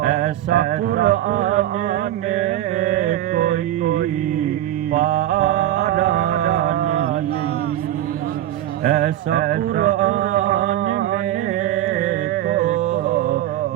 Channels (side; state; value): left; quieter; 13.0 dB